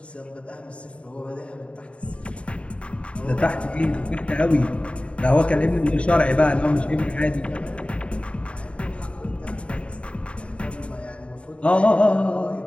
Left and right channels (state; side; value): late; right; 0.060 ms